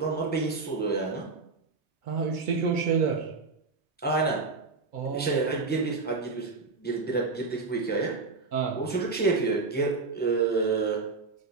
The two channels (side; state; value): left; quieter; 4.1 dB